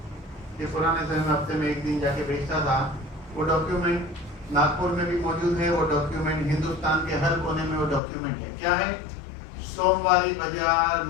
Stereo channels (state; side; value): drops out; right; at 8.0 s